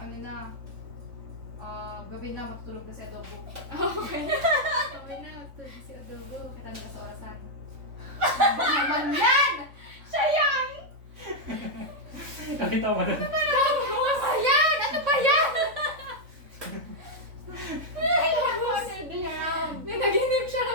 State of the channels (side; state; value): left; late; 3.5 ms